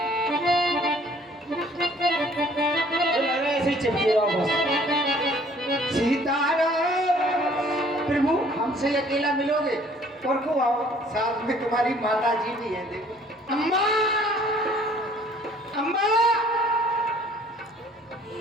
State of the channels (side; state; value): both; normal; correlation 0.57